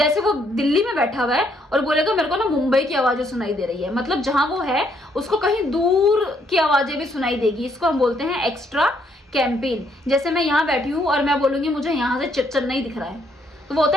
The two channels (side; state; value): both; normal; correlation 0.71